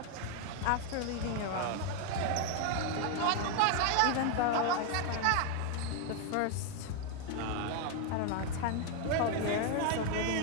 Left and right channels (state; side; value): different; both; correlation 0.01